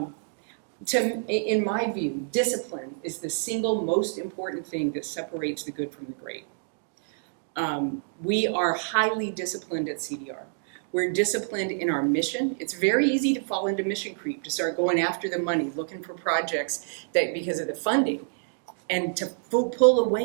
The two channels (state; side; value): silent; left; digital silence